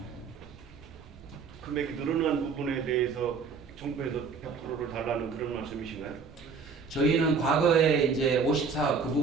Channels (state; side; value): quieter; left; 5.2 dB